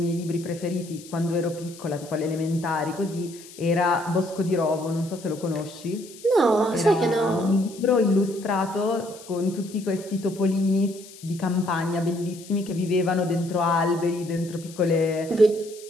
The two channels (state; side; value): noise; left; hiss, 19 dB below the sound